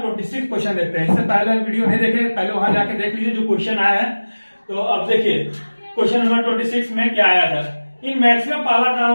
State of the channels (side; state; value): both; inverted; correlation -1.00